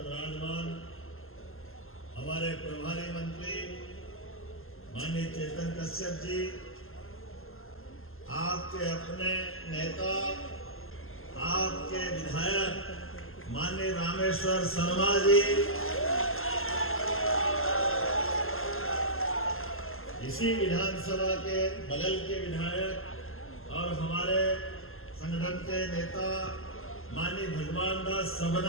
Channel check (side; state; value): right; late; 0.61 ms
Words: विराजमान हमारे प्रभारी मंत्री माननीय चेतन कश्यप जी, आपके अपने नेता, आपके विधायक माननीय रामेश्वर शर्मा जी, इसी विधानसभा के बगल के विधायक और हमारे संगठन के नेता माननीय भगवान दास